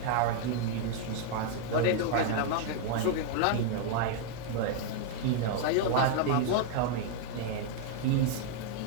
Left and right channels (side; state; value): both; different; correlation 0.00